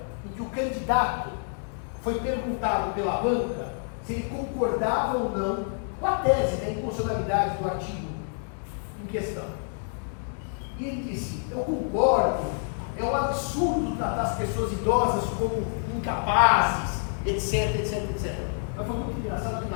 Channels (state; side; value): silent; right; digital silence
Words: em que o candidato foi perguntado pela banca se ele concordava ou não com a tese da inconstitucionalidade do artigo em questão. E ele disse: eu concordo, é um absurdo tratar as pessoas idosas como incapazes, etc, etc, etc. Mas foi muito engraçado que